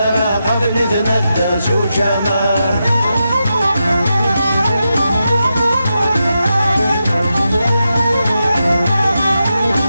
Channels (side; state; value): both; inverted; correlation -0.87